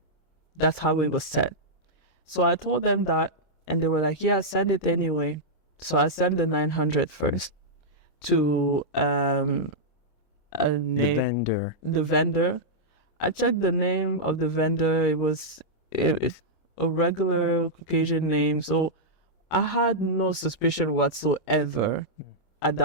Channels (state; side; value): late; right; 26 ms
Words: That's how it was set. So I told them that, and they were like, yeah, send it anyway. So I sent the $900 first to the vendor. I checked the name of the vendor. It was a regular Caucasian name. So I had no suspicion whatsoever at